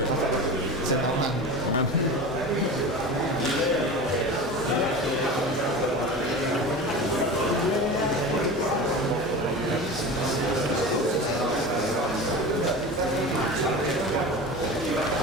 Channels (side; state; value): both; normal; correlation 0.31